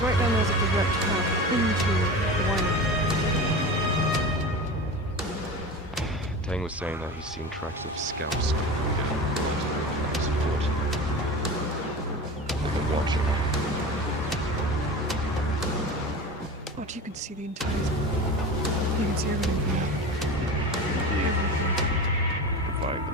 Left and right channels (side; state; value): both; normal; correlation 0.30